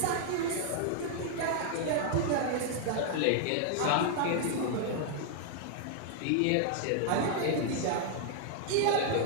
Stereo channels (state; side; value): different; both; correlation 0.00